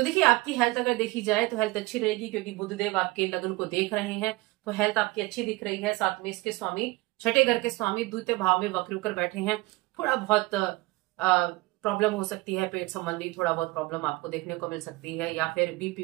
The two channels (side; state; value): left; quieter; 21.3 dB